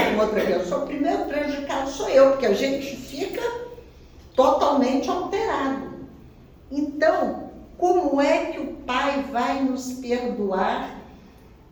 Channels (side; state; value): both; identical; correlation 1.00